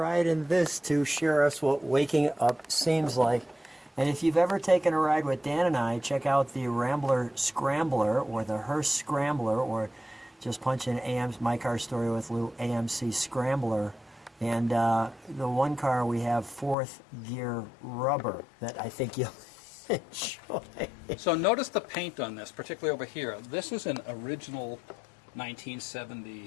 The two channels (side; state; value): right; drops out; at 16.8 s